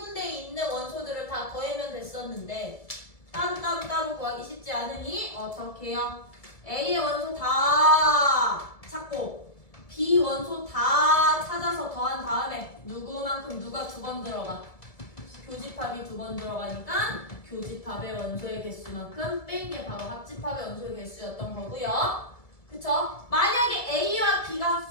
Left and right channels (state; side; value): late; right; 1.7 ms